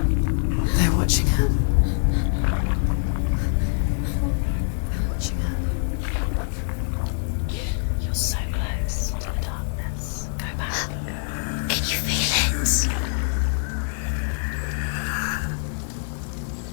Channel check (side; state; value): right; silent; 57 dB below the other